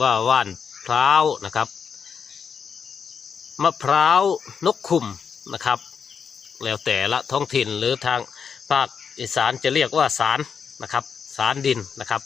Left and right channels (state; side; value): quieter; right; 6.6 dB